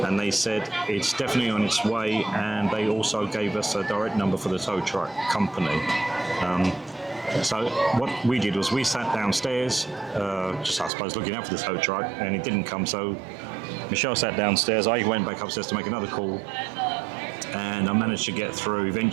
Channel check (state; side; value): drops out; left; at 10.9 s